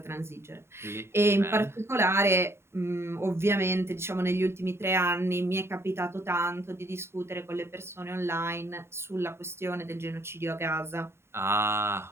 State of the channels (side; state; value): left; late; 0.12 ms